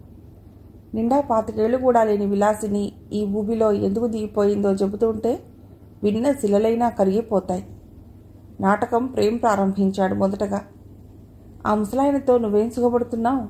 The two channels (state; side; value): identical; both; correlation 1.00